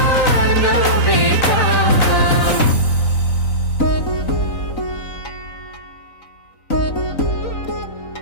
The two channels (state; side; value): late; right; 3.9 ms